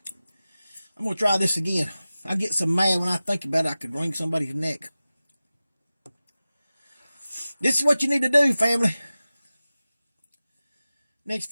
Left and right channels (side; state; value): both; inverted; correlation -0.96